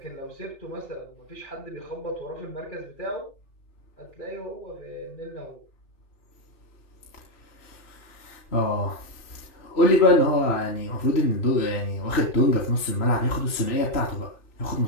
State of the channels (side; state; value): right; late; 3.0 ms